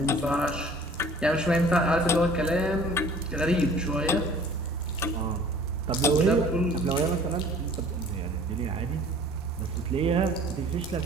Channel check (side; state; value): both; normal; correlation 0.50